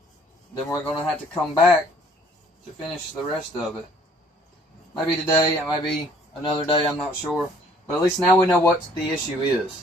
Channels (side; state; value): both; normal; correlation 0.58